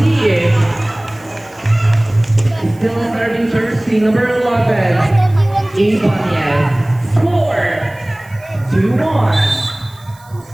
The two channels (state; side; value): noise; right; hiss, 27 dB below the sound